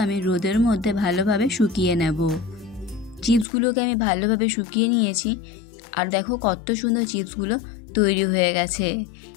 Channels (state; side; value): drops out; right; at 3.5 s